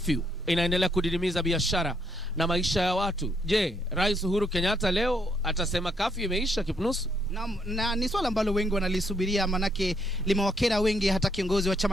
inaendelea kudidimiza biashara na maisha ya watu. Je, Rais Uhuru Kenyatta leo atasema curfew imeisha, Kipnusu? Na ni swala ambalo wengi wanalisubiria, manake limewakera wengi. Hata kiongozi wa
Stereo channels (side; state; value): both; normal; correlation 0.73